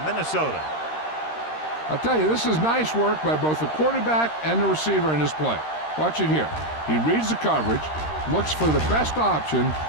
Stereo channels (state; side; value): late; right; 13 ms